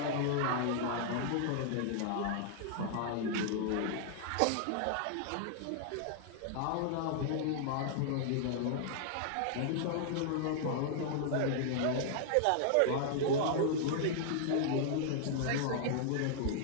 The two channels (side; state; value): both; different; correlation -0.01